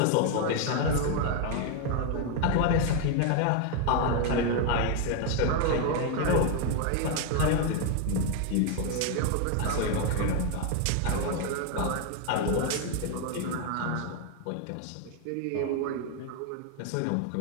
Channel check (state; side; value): different; both; correlation 0.00